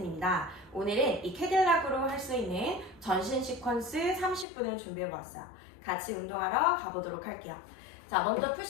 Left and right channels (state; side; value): drops out; right; at 4.5 s